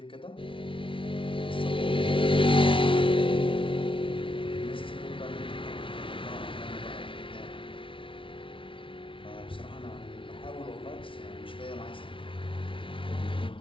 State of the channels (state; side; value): late; right; 0.25 ms